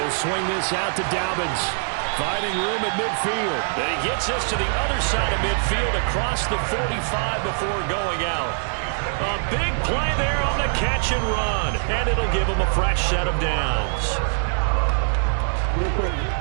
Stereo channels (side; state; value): left; silent; digital silence